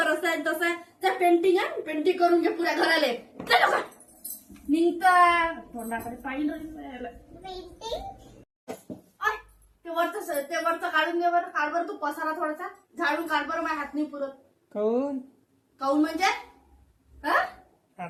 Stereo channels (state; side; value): identical; both; correlation 1.00